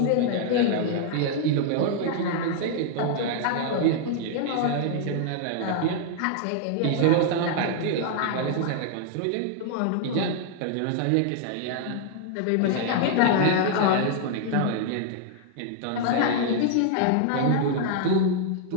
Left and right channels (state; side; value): different; both; correlation 0.00